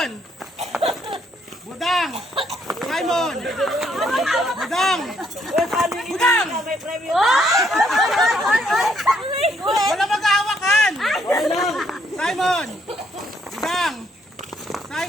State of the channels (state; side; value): normal; both; correlation 0.71